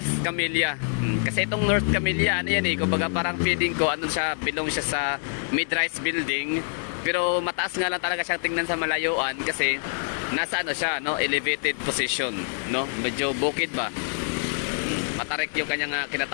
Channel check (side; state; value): right; silent; 61 dB below the other